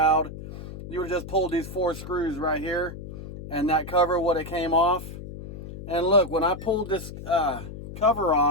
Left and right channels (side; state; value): left; noise; hum, 11 dB below the sound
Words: You would have just pulled these 4 screws right here, and that cover would have came off. And look, when I pulled this cover